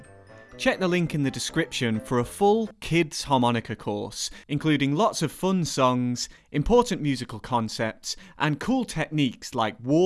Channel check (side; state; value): both; identical; correlation 1.00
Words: Check the link in the description for a full kids harmonica course, including lots of fun songs, important musical concepts, and cool techniques like